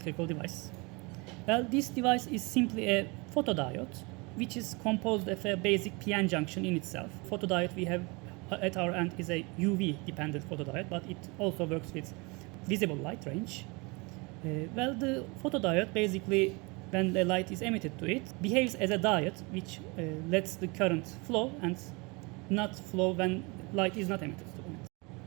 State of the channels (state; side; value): quieter; left; 27.9 dB